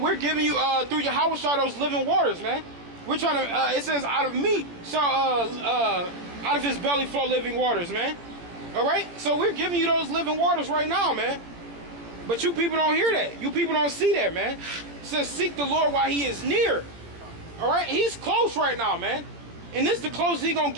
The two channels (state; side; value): late; left; 17 ms